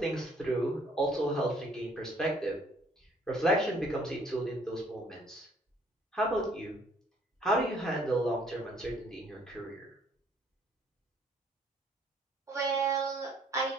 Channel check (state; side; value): normal; both; correlation 0.61